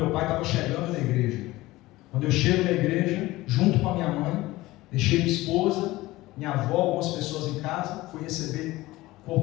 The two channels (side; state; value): right; quieter; 18.6 dB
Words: pai estava chegando na igreja. Quando eu chego na igreja, junto com a minha mãe, deixei minha esposa, minha avó, algumas pessoas em casa, fui receber o